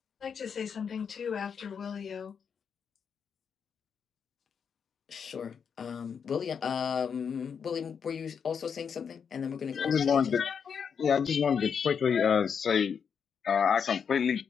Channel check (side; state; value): right; quieter; 6.8 dB